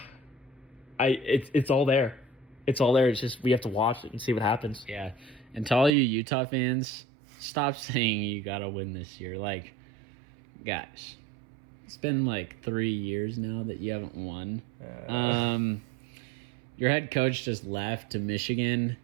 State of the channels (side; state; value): left; drops out; at 5.9 s